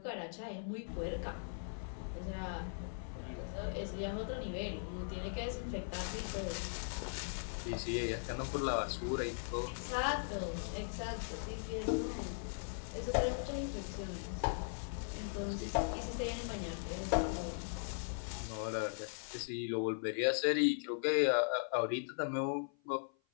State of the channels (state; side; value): silent; right; 52 dB below the other